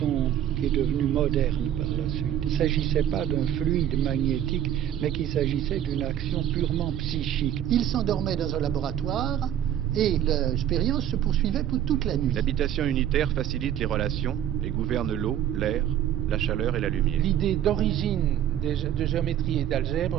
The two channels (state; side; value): quieter; left; 10.8 dB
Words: qui est devenue moderne par la suite. Il ne s'agissait pas d'un fluide magnétique, mais qu'il s'agissait d'une action purement psychique. Il s'endormait dans un laboratoire et l'expérience se poursuivait pour toute la nuit. L'habitation unitaire facilite les relations et gouverne l'eau, l'air, la chaleur et la lumière. L'idée d'origine de géométrie et